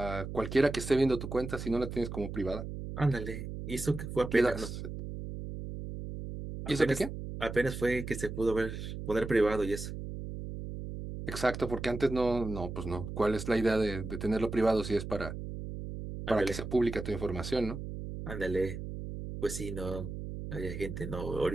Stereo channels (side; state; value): right; noise; hum, 7 dB below the sound